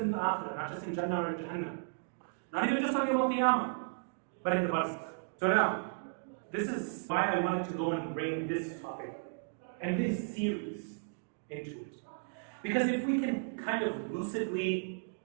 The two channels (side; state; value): left; silent; digital silence